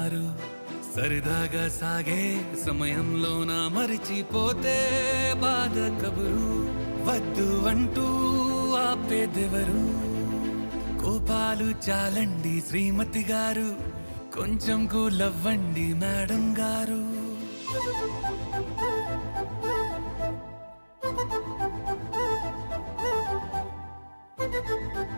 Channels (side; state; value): both; inverted; correlation -1.00